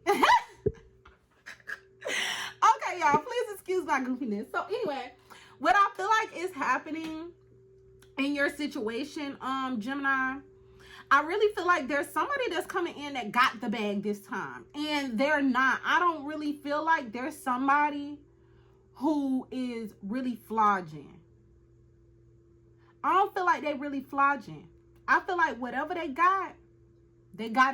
Okay, y'all, please excuse my goofiness. So anyway, what I feel like is happening in your situation, Gemini, I really feel like there's somebody that's coming in that got the bag this time, and they're not. I don't really feel like there's somebody who is really flogging. I don't feel like they really flogging. I feel like whatever they got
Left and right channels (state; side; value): identical; both; correlation 1.00